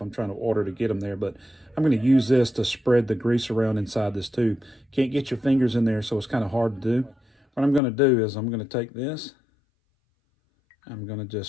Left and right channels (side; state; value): right; drops out; at 7.8 s